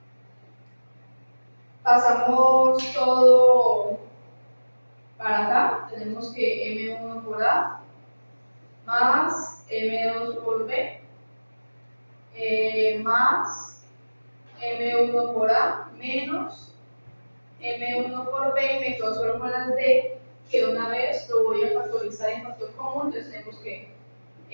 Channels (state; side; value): inverted; both; correlation -1.00